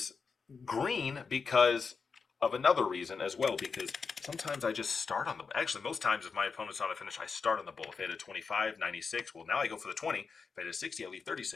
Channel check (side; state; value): right; quieter; 5.2 dB